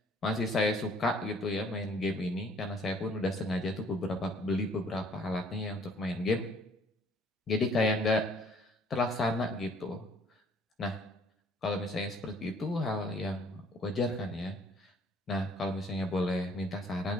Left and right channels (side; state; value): both; normal; correlation 0.59